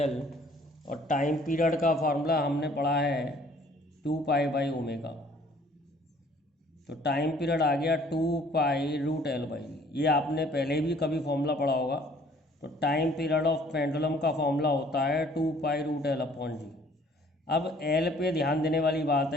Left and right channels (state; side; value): normal; both; correlation 0.57